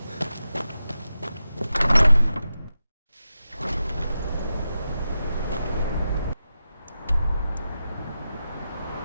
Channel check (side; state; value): both; inverted; correlation -0.90